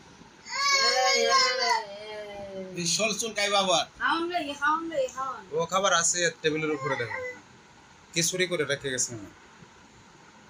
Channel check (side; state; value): both; identical; correlation 1.00